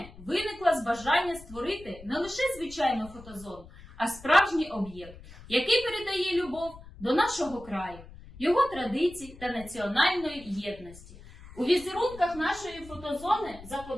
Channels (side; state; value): left; noise; rumble, 18 dB below the sound